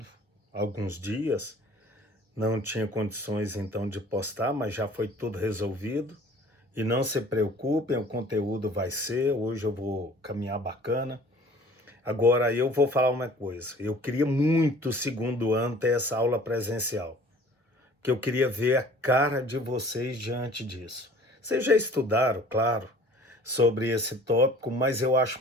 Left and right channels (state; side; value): normal; both; correlation 0.49